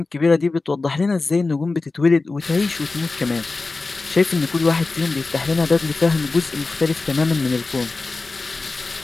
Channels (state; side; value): quieter; right; 3.7 dB